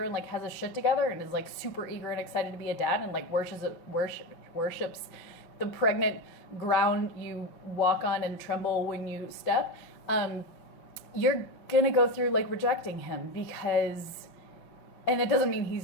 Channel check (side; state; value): right; late; 5.4 ms